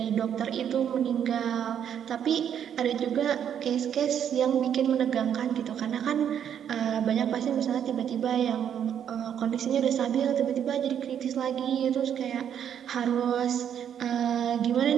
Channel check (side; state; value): left; quieter; 9.0 dB